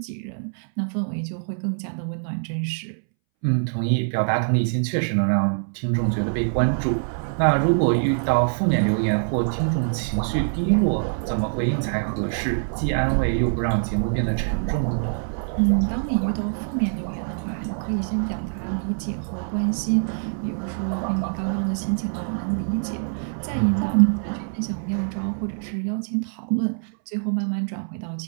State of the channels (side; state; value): left; silent; 62 dB below the other